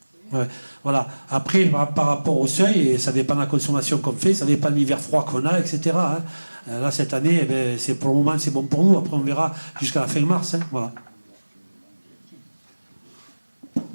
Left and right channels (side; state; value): both; inverted; correlation -1.00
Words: Ouais, voilà. Après, par rapport au seuil, et ça dépend de la consommation qu'on fait, ça dépend de l'hiver froid qu'on a, etc. Là, cette année, pour le moment, c'est bon pour nous. Après, on verra jusqu'à la fin mars. Voilà.